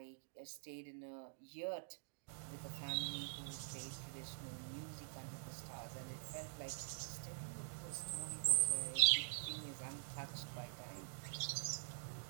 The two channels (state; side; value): silent; left; digital silence